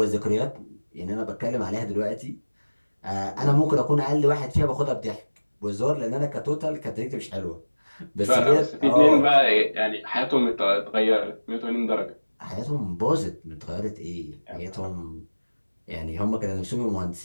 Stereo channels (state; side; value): inverted; both; correlation -1.00